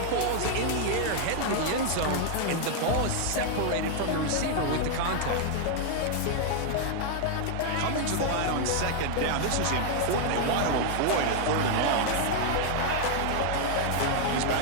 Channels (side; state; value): both; different; correlation 0.00